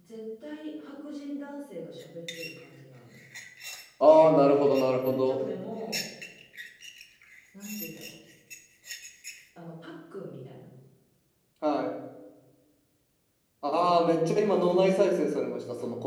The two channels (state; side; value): identical; both; correlation 1.00